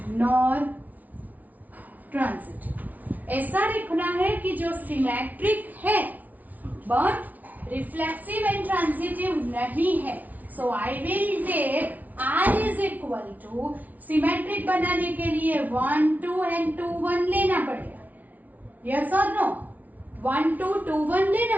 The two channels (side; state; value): left; late; 0.076 ms